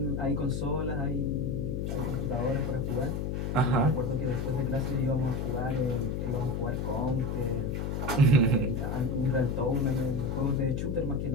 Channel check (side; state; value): left; noise; hum, 1 dB below the sound